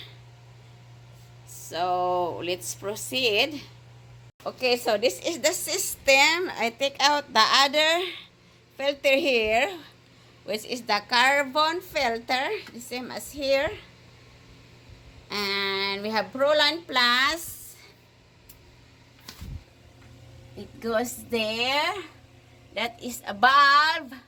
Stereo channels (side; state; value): both; identical; correlation 1.00